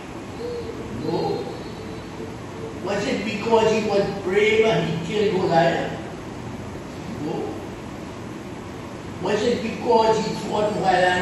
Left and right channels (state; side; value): identical; both; correlation 1.00